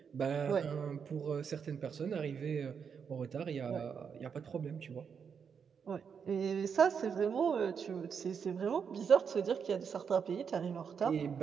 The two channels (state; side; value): quieter; left; 6.7 dB